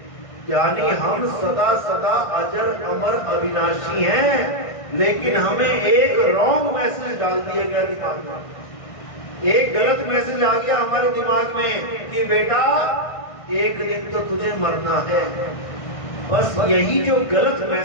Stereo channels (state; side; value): late; right; 1.5 ms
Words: यानी हम सदा सदा अजर अमर अविनाशी हैं, लेकिन हमें एक रॉन्ग मैसेज डाल दिया गया दिमाग में, एक गलत मैसेज आ गया हमारे दिमाग में कि बेटा एक दिन तो तुझे मरना है। बस यही जो गलत